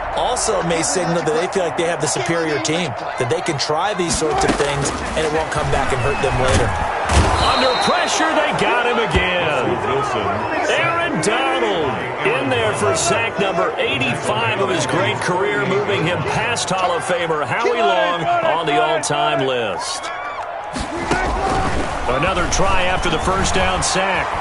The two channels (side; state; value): both; identical; correlation 1.00